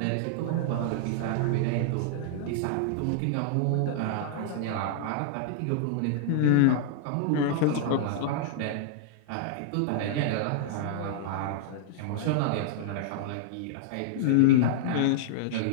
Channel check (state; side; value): different; both; correlation -0.01